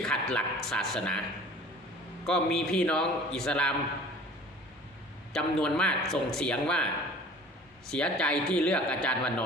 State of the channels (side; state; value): both; normal; correlation 0.46